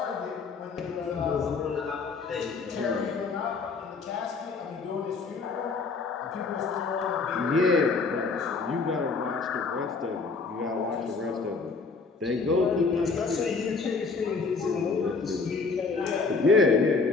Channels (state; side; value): quieter; right; 4.4 dB